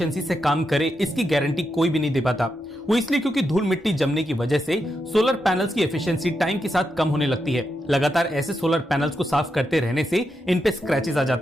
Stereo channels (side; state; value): both; normal; correlation 0.85